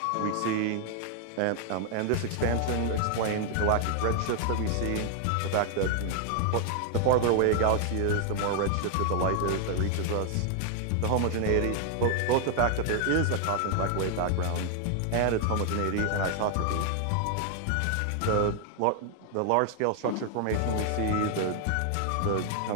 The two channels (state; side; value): different; both; correlation 0.00